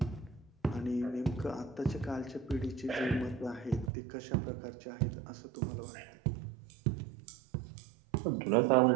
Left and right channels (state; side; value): drops out; left; at 3.9 s